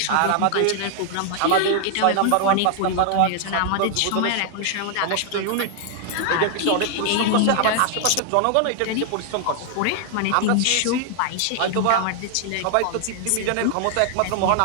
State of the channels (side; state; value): both; different; correlation 0.00